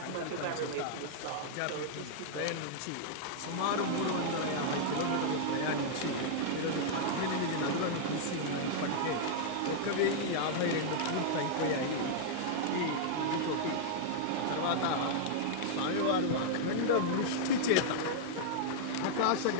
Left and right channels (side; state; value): both; different; correlation -0.01